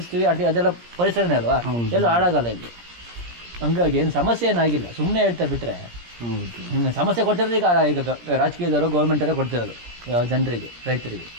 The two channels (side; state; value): left; late; 17 ms